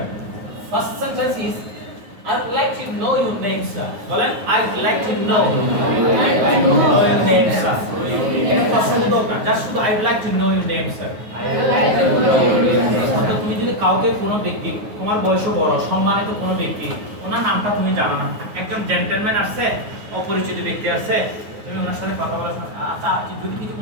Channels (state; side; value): late; left; 9.4 ms